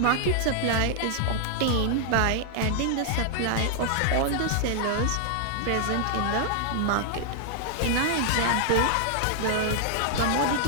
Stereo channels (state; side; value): different; both; correlation -0.01